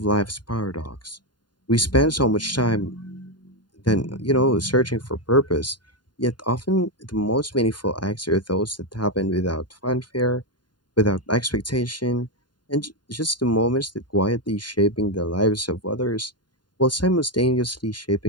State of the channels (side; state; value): right; late; 0.71 ms